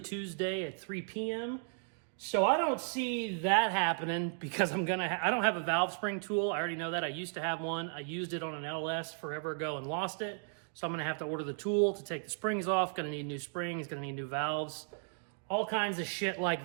Tuesday at 3 p.m. So I don't see that happening because I don't have a valve spring tool. I already know that. I used to have one. I used it on an LS forever ago and lost it. So I'm gonna have to order the tool to take the springs off. Gonna need new springs, gonna need new valves. All kinds of shit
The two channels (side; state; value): left; silent; 54 dB below the other